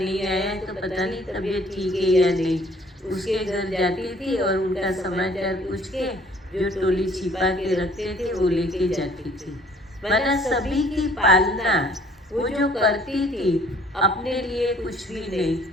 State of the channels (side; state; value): both; normal; correlation 0.57